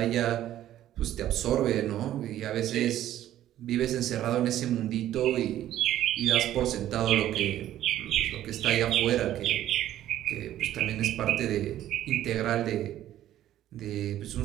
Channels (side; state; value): left; quieter; 12.7 dB